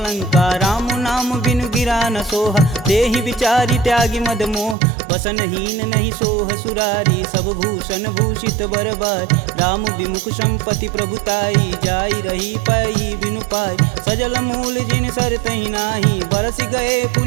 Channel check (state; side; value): drops out; left; at 4.8 s